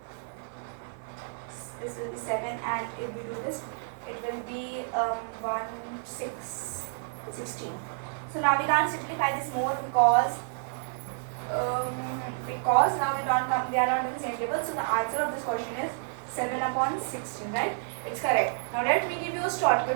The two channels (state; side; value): silent; left; 58 dB below the other